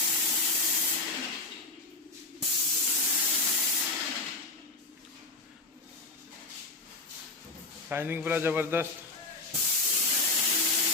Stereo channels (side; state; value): right; quieter; 3.2 dB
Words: शाइनिंग पूरा जबरदस्त